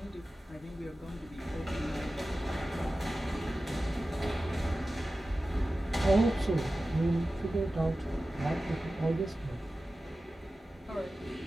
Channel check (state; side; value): normal; both; correlation 0.95